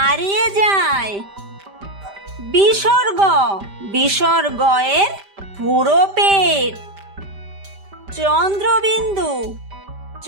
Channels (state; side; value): late; left; 5.1 ms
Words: যায়। বিসর্গ বিসর্গয়ের পুরো পেট। চন্দ্রবিন্দু